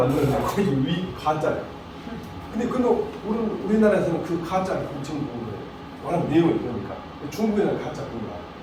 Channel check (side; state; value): both; identical; correlation 1.00